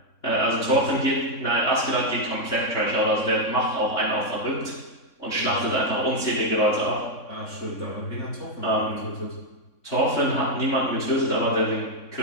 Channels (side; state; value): right; late; 3.6 ms